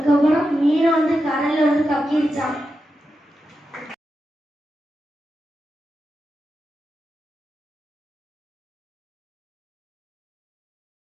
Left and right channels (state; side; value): normal; both; correlation 0.89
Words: மீனை வந்து கடல்ல வந்து கக்கிருச்சான்.